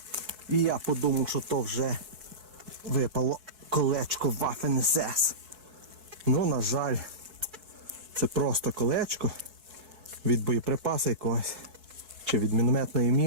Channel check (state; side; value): late; left; 4.6 ms